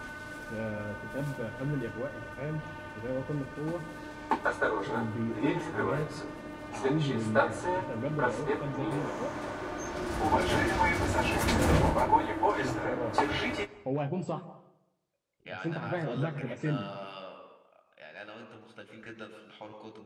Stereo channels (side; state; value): both; identical; correlation 1.00